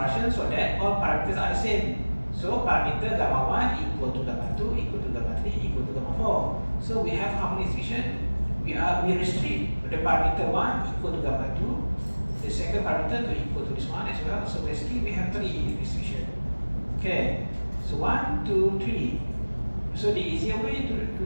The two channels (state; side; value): inverted; both; correlation -1.00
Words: so that all parameters are the same. So parameter gamma 1 equal to gamma 2 equal to gamma 3 equal to gamma 4. So we have how many restriction? We restrict the parameter 1 equal to gamma 2, the second parameter 2 equal to this one as well. So basically we have 3 restriction. Okay, so 1, 2, 3. So the easier way